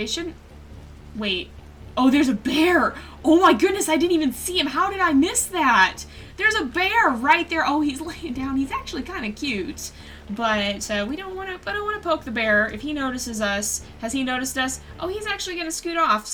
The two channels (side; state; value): both; identical; correlation 1.00